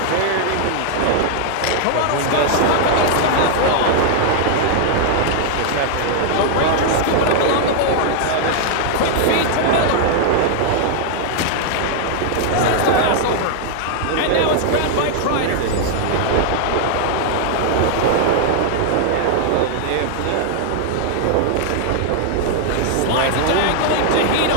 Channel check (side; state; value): both; different; correlation 0.00